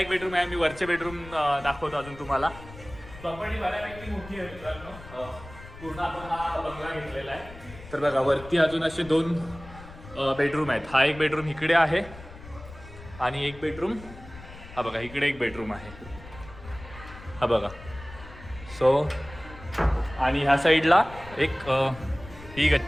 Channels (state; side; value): noise; left; rumble, 17 dB below the sound